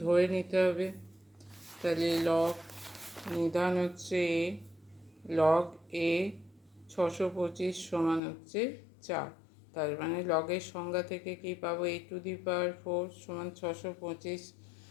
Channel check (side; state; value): right; drops out; at 8.2 s